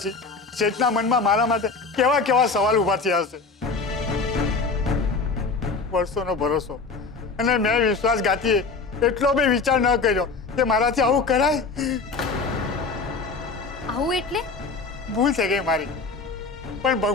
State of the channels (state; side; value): quieter; right; 4.3 dB